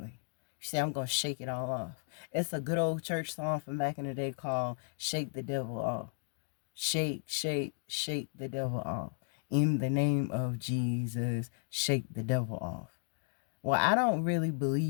You say, I'm going to shake it all off. It's a good old church song from back in the day called Shake the Devil Off. Shake, shake, shake the devil off. In the name of Jesus, shake the devil off. Well, I don't really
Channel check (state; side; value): silent; right; digital silence